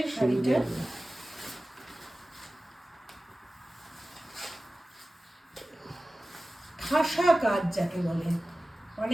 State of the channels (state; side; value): normal; both; correlation 0.96